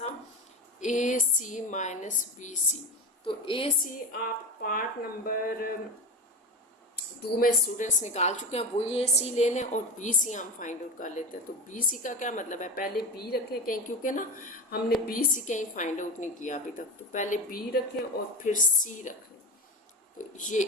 ac - bc। तो ac आप पार्ट नंबर 2 में स्टूडेंट्स निकाल चुके हैं, वही ac ले लें, और bc हम फाइंड आउट कर लेते हैं। तो bc का क्या मतलब है, पहले b रखें कहीं, क्योंकि ना हमने bc कहीं फाइंड आउट नहीं किया अभी तक। तो पहले b रखें और फिर c रखें। तो ये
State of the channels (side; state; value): both; normal; correlation 0.23